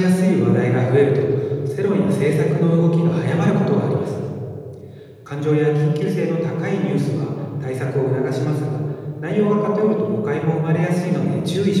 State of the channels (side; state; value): both; identical; correlation 1.00